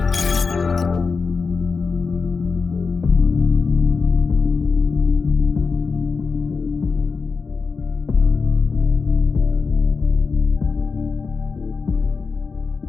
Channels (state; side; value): quieter; right; 4.8 dB